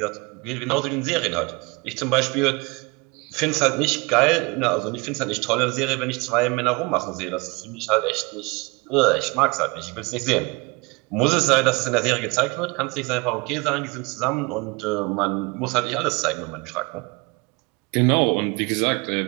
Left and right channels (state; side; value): quieter; left; 26.6 dB